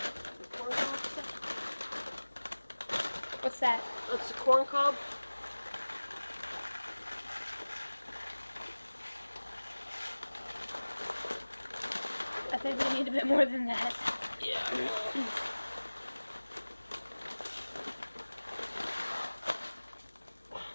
What's that? That's the corn cob. I think we need a bit more than that. Yeah.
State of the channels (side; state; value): both; inverted; correlation -1.00